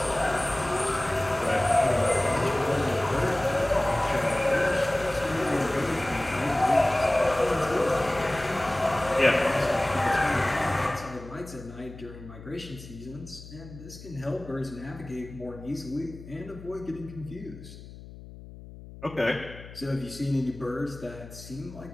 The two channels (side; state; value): left; noise; hum, 16 dB below the sound